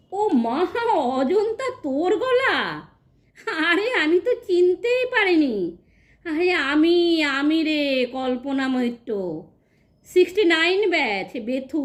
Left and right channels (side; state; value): both; identical; correlation 1.00